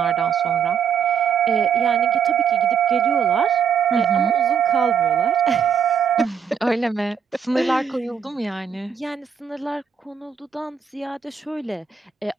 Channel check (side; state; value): left; quieter; 7.1 dB